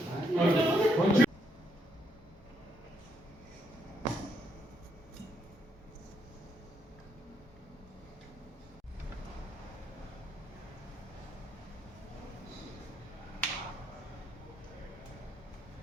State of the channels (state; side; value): normal; both; correlation 0.75